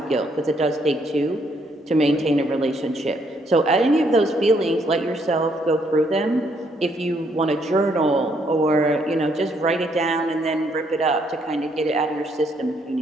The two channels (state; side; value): normal; both; correlation 0.71